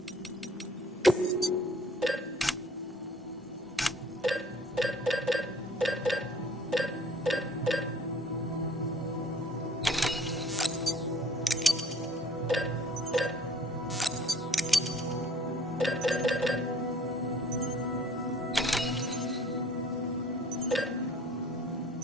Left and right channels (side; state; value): both; normal; correlation 0.55